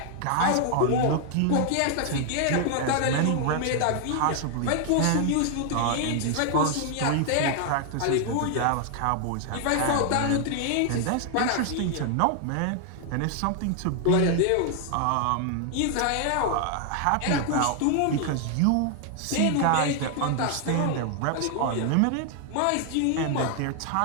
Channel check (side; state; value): both; different; correlation 0.00